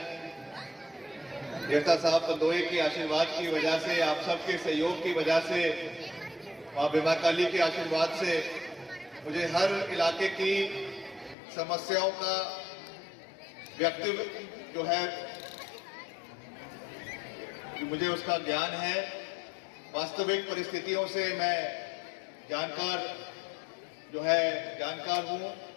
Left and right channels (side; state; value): right; drops out; at 11.4 s